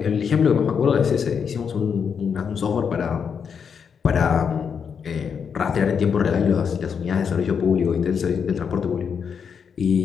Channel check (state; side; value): quieter; right; 6.7 dB